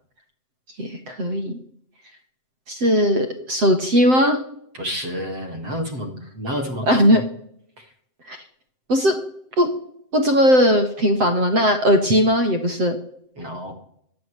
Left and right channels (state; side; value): late; left; 7.8 ms